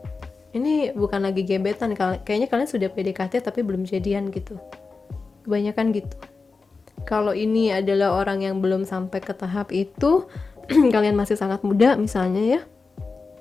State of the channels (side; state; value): right; quieter; 4.2 dB